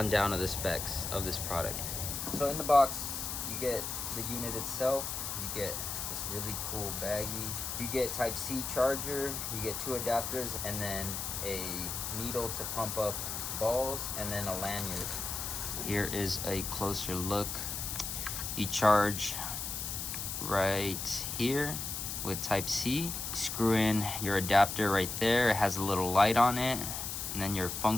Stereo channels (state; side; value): noise; left; hiss, 4 dB below the sound